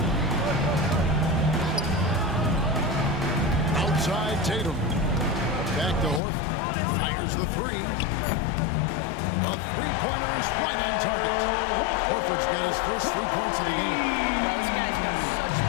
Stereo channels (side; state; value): right; drops out; at 6.2 s